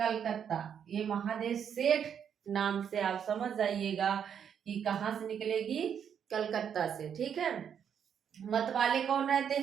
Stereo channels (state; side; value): quieter; left; 8.1 dB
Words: ये महादेव सेठ नाम से आप समझ जाइएगा कि कहाँ से निकलेगी? कलकत्ता से। ठीक है, मतवाले कौन रहते